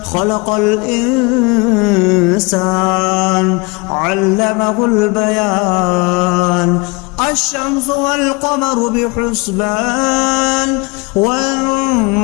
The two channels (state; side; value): quieter; right; 28.0 dB